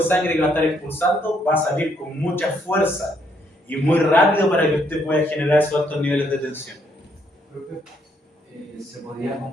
sangre que va a estar expulsando va a salir con mucha fuerza y muy rápido para que usted pueda generar esos altos niveles de tensión. ¿Se podría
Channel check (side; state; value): both; normal; correlation 0.71